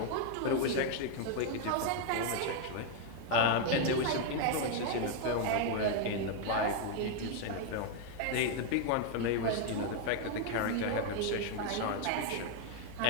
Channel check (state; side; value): different; both; correlation 0.00